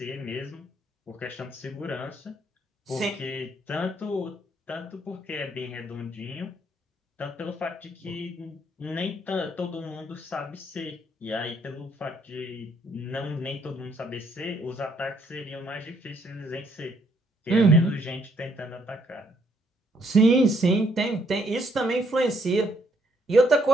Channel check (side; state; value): both; normal; correlation 0.69